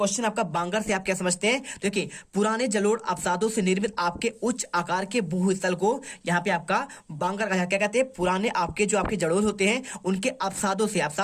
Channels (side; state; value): both; identical; correlation 1.00